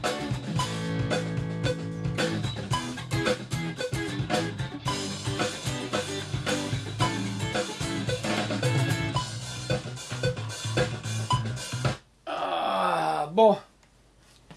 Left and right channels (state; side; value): identical; both; correlation 1.00